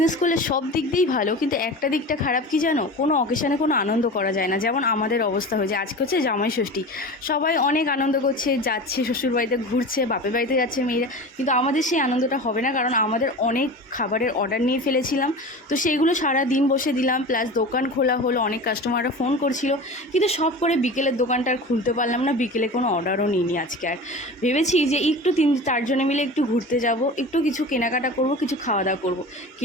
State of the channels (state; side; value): normal; both; correlation 0.33